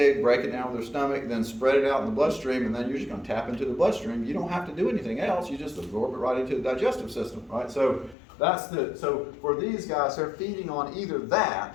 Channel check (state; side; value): drops out; right; at 8.2 s